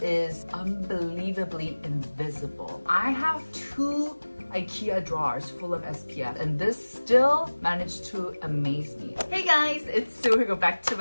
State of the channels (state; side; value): inverted; both; correlation -1.00